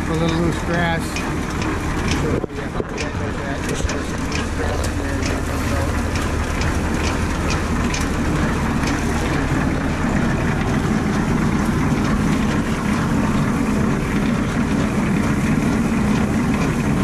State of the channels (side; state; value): both; identical; correlation 1.00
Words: a little loose grass.